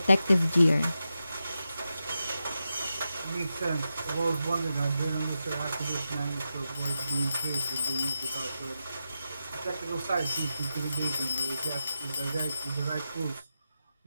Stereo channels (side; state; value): both; inverted; correlation -0.89